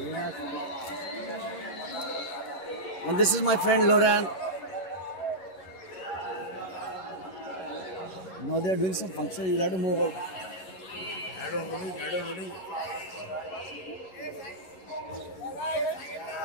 And this is my friend Loran. Now they are doing some function, you'll have to move out.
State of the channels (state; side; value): late; right; 11 ms